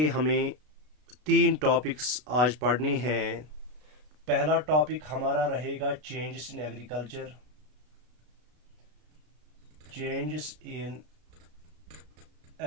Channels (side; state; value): left; late; 32 ms